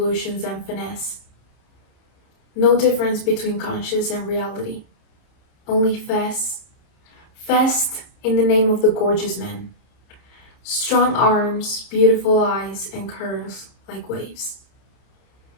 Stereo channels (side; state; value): right; late; 30 ms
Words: and finesse. No difference between conscious and reality, only fest in the name of the gorgeous man. Strong arms, beautiful eyes, and curves like waves.